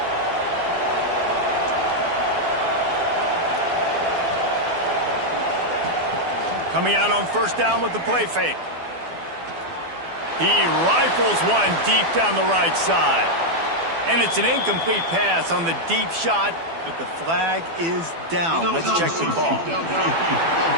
Coming out on first down with the play fake. He rifles one deep down the right side. And it's an incomplete pass on the deep shot, but the flag is down. Let's check the call.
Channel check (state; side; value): late; left; 12 ms